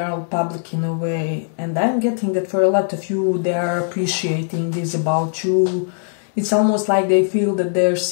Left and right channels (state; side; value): silent; right; 66 dB below the other